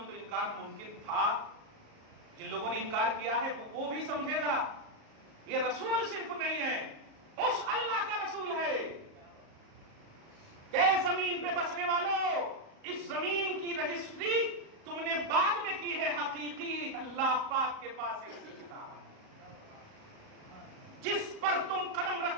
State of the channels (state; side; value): late; left; 38 ms